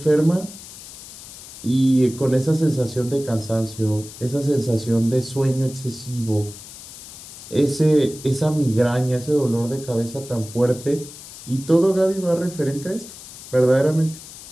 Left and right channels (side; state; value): left; noise; hiss, 15 dB below the sound